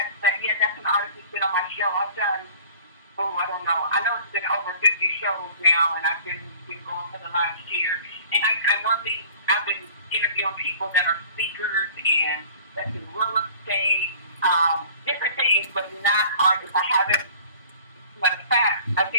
an artist that's been on my show. I've done, I don't know. I know it's been over 50 shows now, and I've been going for the last year. And I've been interviewing people that are speakers and that's in real estate, different things, but not artists. I haven't. Matter of fact, I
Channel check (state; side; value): inverted; both; correlation -0.48